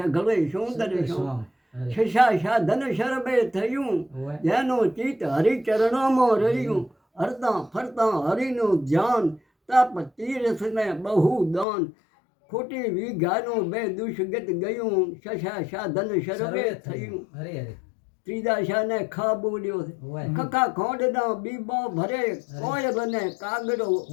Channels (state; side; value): drops out; right; at 11.7 s